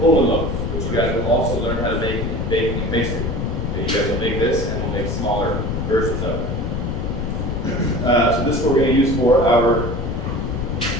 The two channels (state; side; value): noise; left; rumble, 2 dB below the sound